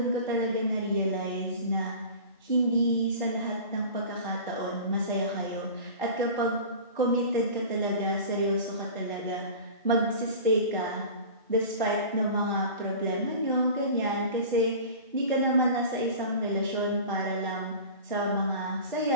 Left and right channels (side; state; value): both; inverted; correlation -0.37